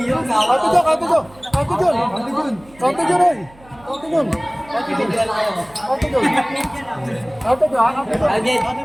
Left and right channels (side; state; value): right; noise; hum, 25 dB below the sound